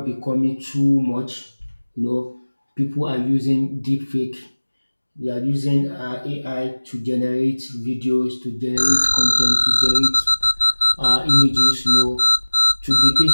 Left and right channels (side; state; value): both; inverted; correlation -1.00